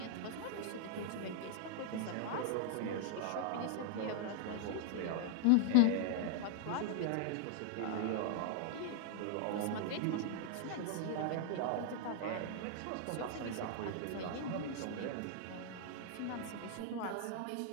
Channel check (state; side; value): different; both; correlation 0.00